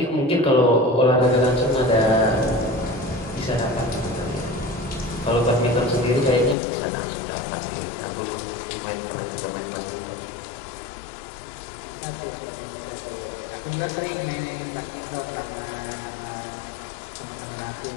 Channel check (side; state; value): right; drops out; at 6.6 s